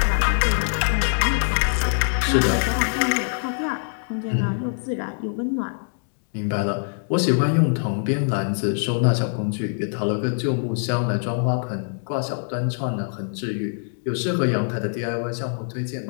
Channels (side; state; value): right; silent; digital silence